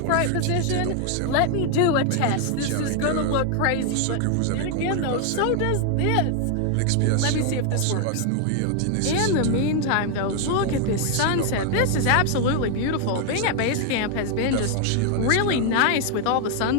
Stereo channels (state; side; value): different; both; correlation 0.00